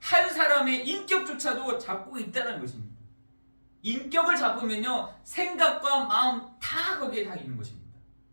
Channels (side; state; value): both; inverted; correlation -1.00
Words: 사람의 인격조차도 잡고 있다는 것입니다. 인격을 잡으면요, 생각과 마음 다 거기에 다 있는 것입니다.